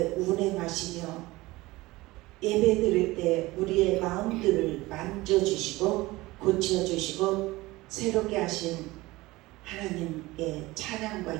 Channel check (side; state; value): left; quieter; 20.0 dB